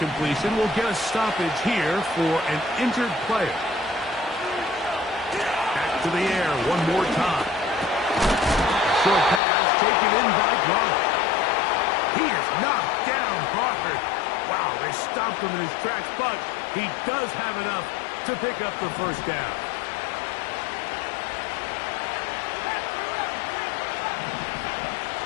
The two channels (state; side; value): drops out; right; at 9.4 s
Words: we'll get a stoppage here for an injured player. Back to the air one more time. Short pass taken in by Gronk. He is knocked down hard. Wow, they stopped him in his tracks, but he does have enough to pick up the 1st down.